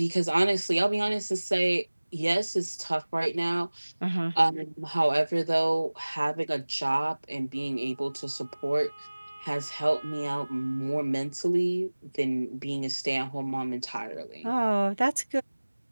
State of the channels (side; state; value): both; inverted; correlation -1.00